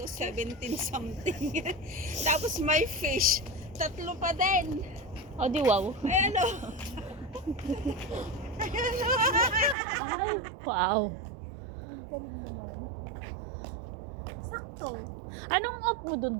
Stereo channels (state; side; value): drops out; left; at 9.8 s